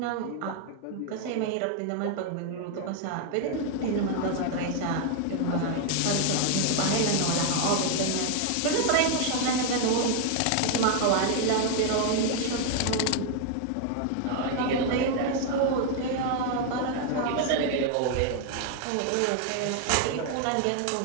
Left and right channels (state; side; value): different; both; correlation 0.00